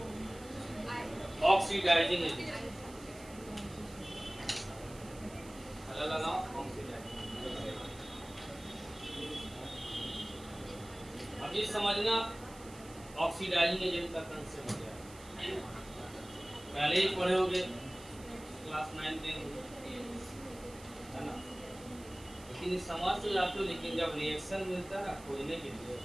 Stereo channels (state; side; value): noise; right; hiss, 19 dB below the sound